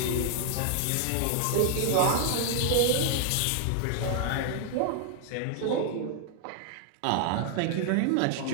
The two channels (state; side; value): different; both; correlation 0.00